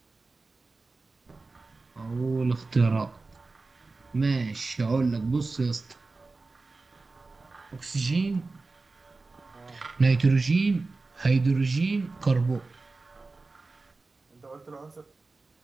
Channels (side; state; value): left; quieter; 3.7 dB